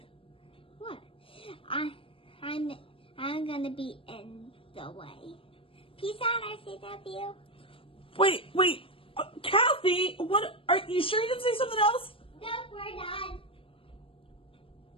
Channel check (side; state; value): right; late; 0.26 ms